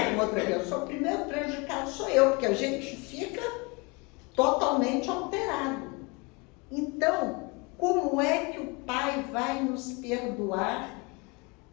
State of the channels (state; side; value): quieter; right; 28.7 dB